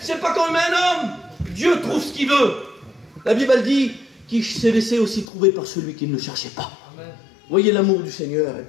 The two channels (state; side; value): drops out; right; at 5.2 s